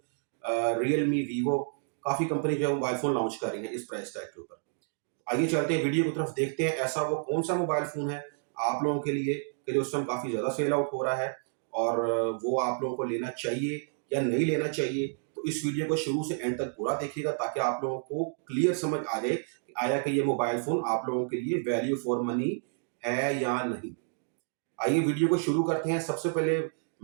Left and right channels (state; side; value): silent; left; digital silence